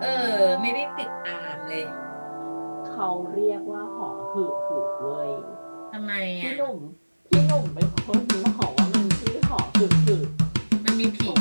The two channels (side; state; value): both; inverted; correlation -1.00